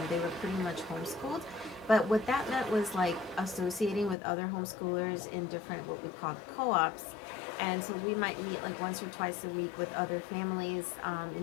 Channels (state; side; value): drops out; right; at 4.2 s